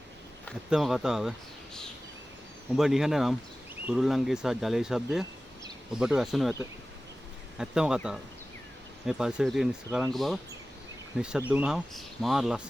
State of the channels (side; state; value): both; normal; correlation 0.96